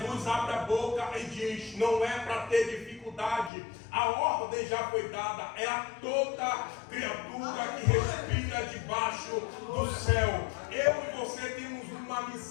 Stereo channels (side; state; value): right; drops out; at 3.5 s